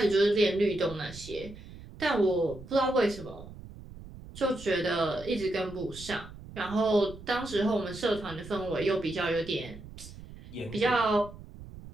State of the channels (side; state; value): right; noise; rumble, 15 dB below the sound